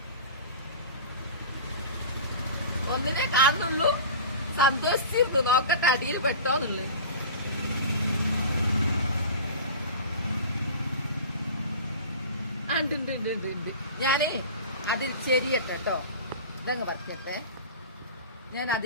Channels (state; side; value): inverted; both; correlation -0.35